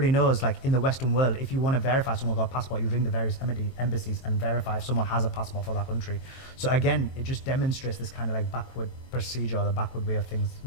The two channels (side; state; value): right; late; 21 ms